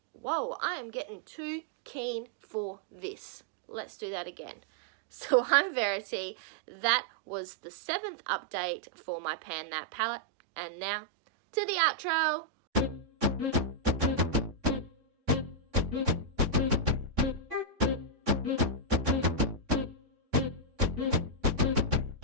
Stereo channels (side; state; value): left; late; 3.6 ms